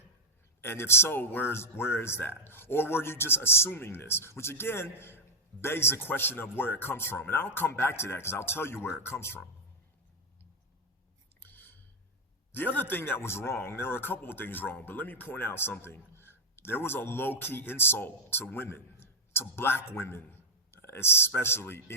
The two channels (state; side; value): normal; both; correlation -0.02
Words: And if so, where is that? Or were you just assuming this? Which again, begs the question of where it comes from. And I'll come back to that because I'll tell you where it comes from. The other thing that was wrong, there were a couple of things wrong, but let me point out something. There was a low-key insult to women, to Black women, especially